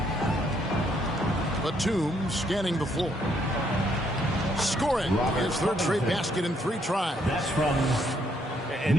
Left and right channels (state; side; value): normal; both; correlation 0.71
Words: Batum scanning the floor. Scoring his third straight basket in 3 tries. That's from